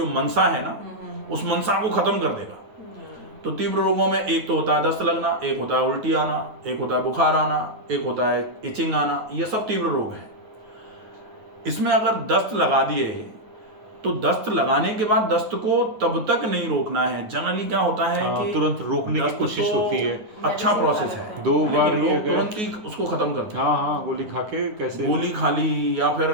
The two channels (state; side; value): late; left; 9.4 ms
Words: मनसा है ना, उस मनसा को खत्म कर देगा। तो तीव्र रोगों में एक तो होता है दस्त लगना, एक होता है उल्टी आना, एक होता है बुखार आना, एक होता है इचिंग आना। ये सब तीव्र रोग हैं। इसमें अगर दस्त लगा दिए तो दस्त लगाने के बाद दस्त को तब तक नहीं रोकना है। जनरली क्या होता है कि तुरंत रोकने की कोशिश होती है। अच्छा प्रोसेस है, 2 बार लेकिन लोग तुरंत ही उसको खत्म करते हैं। हाँ, गोली खा के कैसे, गोली खा ली या फिर